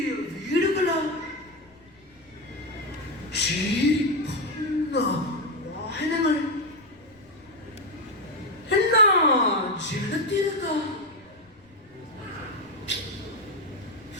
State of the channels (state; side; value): noise; left; rumble, 29 dB below the sound